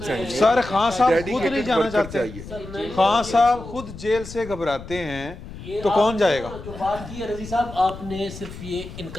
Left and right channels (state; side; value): noise; left; rumble, 13 dB below the sound